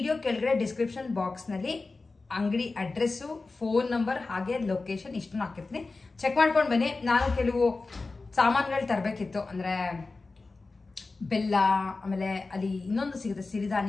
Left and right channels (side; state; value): right; quieter; 3.7 dB